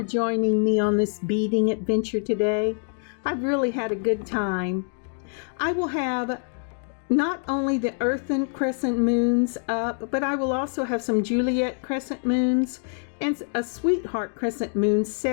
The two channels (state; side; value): silent; right; 56 dB below the other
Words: joining me on this beading adventure today. I've really had a good time. I will have not only the Earthen crescent moons up, but I will also have some Juliet crescent moons and a Sweetheart crescent moon